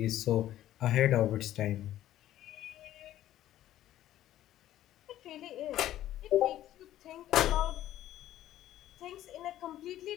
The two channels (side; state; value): right; quieter; 13.1 dB